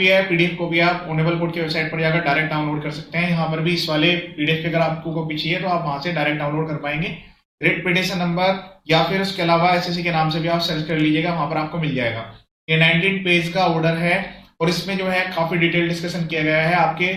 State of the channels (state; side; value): identical; both; correlation 1.00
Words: है, पीडीएफ कॉपी, आप ऑनरेबल कोर्ट की वेबसाइट पर जाकर डायरेक्ट डाउनलोड कर सकते हैं। यहाँ पर भी इस वाले पीडीएफ की अगर आपको कॉपी चाहिए तो आप वहां से डायरेक्ट डाउनलोड कर पाएंगे। रिट पिटिशन नंबर या फिर उसके अलावा एसएससी के नाम से भी आप सर्च कर लीजिएगा, वहां पर आपको मिल जाएगा। ये 19 पेज का ऑर्डर है और इसमें जो है काफी डिटेल डिस्कशन किया गया है। आपके